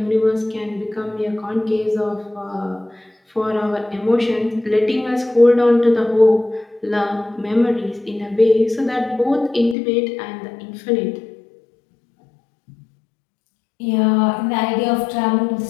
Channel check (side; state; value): right; drops out; at 9.8 s